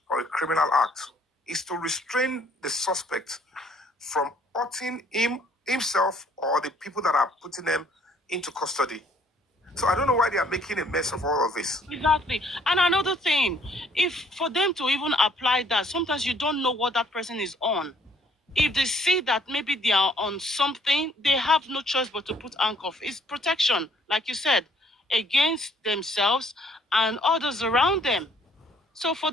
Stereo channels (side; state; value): both; normal; correlation 0.63